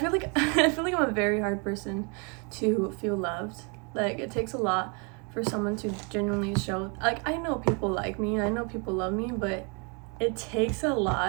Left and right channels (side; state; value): left; quieter; 34.2 dB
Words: like I'm a very hard person to feel loved. Like, it takes a lot for someone to genuinely show, like, I know people like me, I know people love me, but it takes a